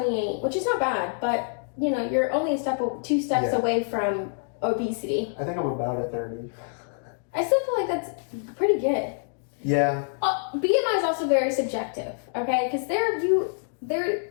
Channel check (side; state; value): right; silent; digital silence